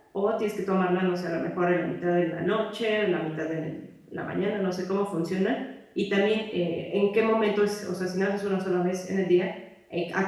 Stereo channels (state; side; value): identical; both; correlation 1.00